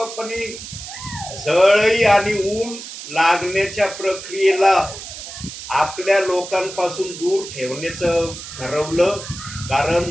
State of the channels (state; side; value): noise; right; hiss, 11 dB below the sound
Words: झळई आणि ऊन लागण्याच्या प्रक्रियेला आपल्या लोकांपासून दूर ठेवण्याचं ठरवलं? कारण